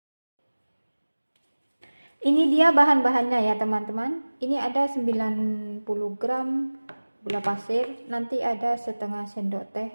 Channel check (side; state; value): both; inverted; correlation -1.00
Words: Ini dia bahan-bahannya ya teman-teman. Ini ada 90 gram gula pasir, nanti ada setengah sendok teh